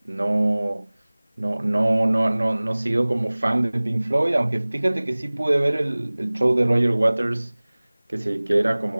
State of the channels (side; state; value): both; inverted; correlation -1.00